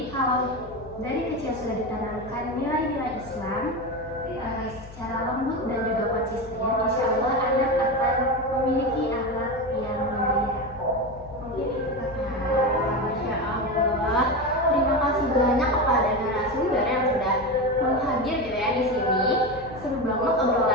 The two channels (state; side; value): noise; left; hum, 18 dB below the sound